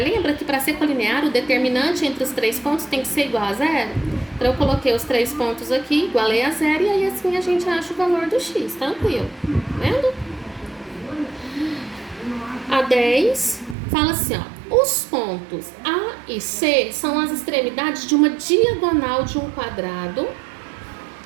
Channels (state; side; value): drops out; left; at 13.8 s